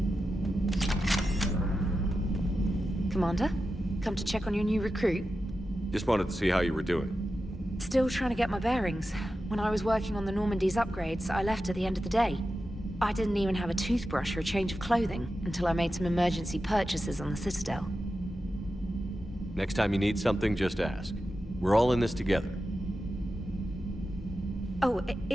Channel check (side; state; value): both; normal; correlation 0.91